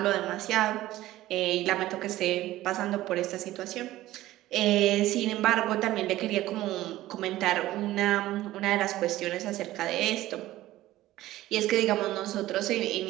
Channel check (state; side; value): quieter; left; 15.7 dB